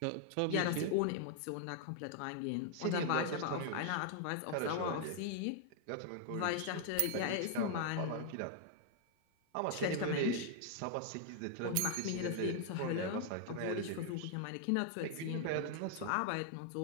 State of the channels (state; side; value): different; both; correlation 0.00